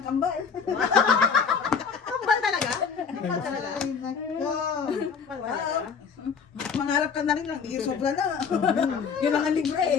kambal. Kambal talaga? Kambal talaga? Ay, nako. Kambal talaga? Mangarap ka na rin lang. Di sobra na. Yun lang ang libre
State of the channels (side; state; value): right; quieter; 6.2 dB